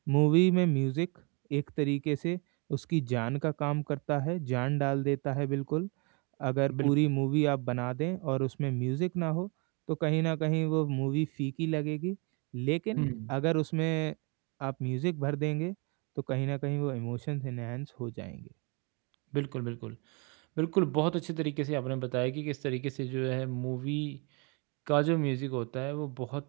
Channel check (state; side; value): quieter; left; 32.4 dB